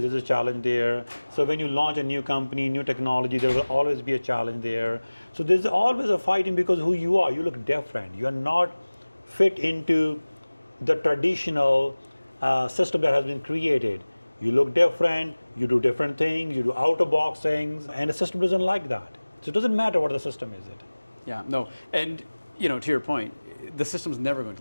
There's a challenge there. So when you launch a new company, new technology, there will always be a challenge there. So there's always a fighting because who you are. You look different. You are not fit into the traditional system that has been created. You look different, you do different things, you do out-of-box things, and the system doesn't like that. So it doesn't matter what the system is. Yeah, no. And, to your point, the system's never going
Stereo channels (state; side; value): inverted; both; correlation -1.00